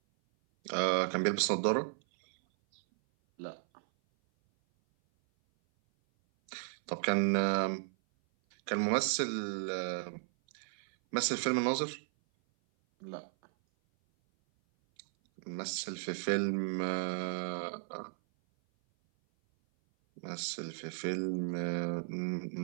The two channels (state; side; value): silent; left; 55 dB below the other